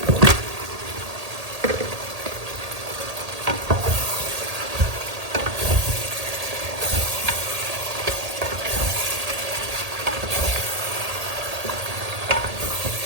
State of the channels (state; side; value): late; left; 1.8 ms